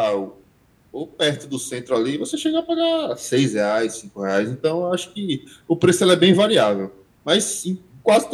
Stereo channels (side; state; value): both; identical; correlation 1.00